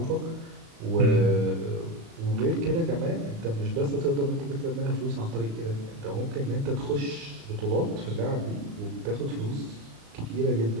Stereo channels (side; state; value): left; late; 36 ms